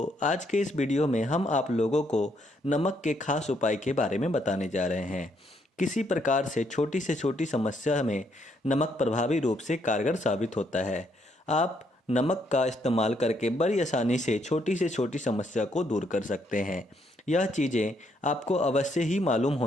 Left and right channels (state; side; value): normal; both; correlation 0.73